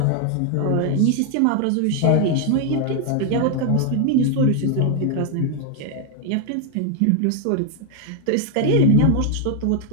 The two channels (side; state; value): both; different; correlation 0.00